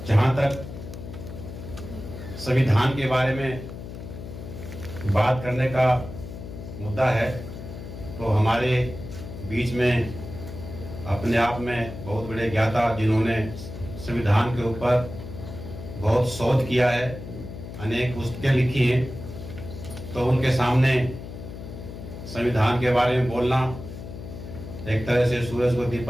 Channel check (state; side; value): noise; left; hum, 11 dB below the sound